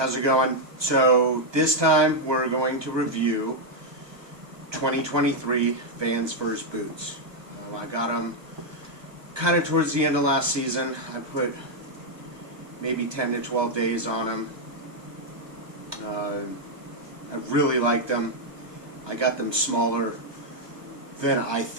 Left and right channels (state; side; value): late; left; 1.2 ms